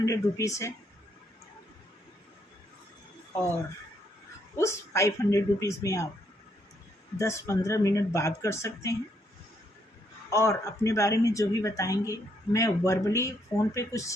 रुपीज़ है, और उस 500 रुपीज़ में आप 10-15 मिनट बात कर सकते हैं, और अपने बारे में जो भी बताएंगे मैं वर्बली फ़ोन पे कुछ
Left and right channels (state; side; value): normal; both; correlation 0.73